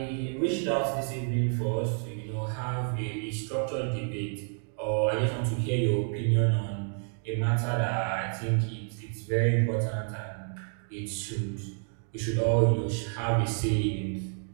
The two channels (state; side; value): silent; left; 58 dB below the other